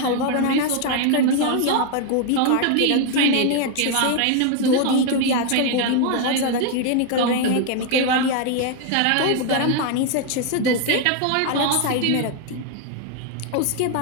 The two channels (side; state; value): both; different; correlation 0.01